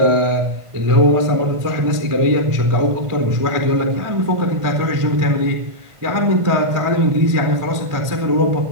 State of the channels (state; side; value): late; left; 1.5 ms